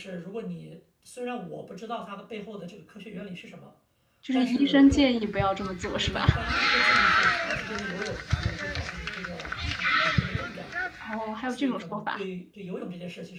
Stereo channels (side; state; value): both; identical; correlation 1.00